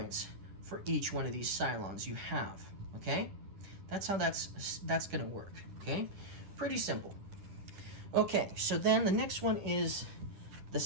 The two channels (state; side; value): late; left; 10 ms